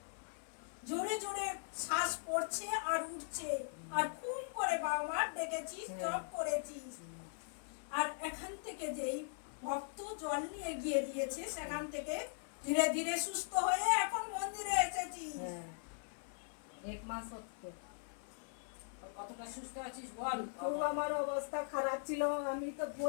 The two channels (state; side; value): silent; right; 51 dB below the other